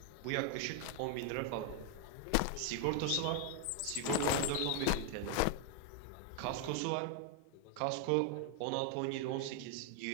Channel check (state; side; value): different; both; correlation 0.01